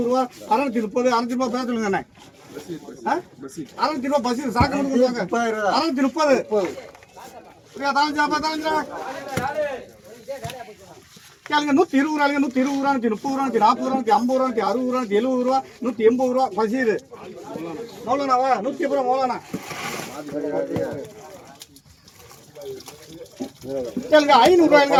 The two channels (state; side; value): identical; both; correlation 1.00